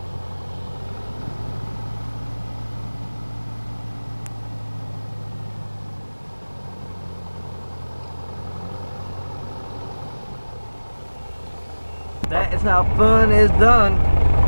That is how fun is done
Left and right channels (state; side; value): inverted; both; correlation -1.00